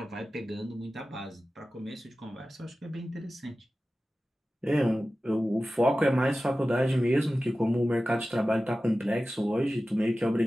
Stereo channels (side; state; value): both; normal; correlation 0.95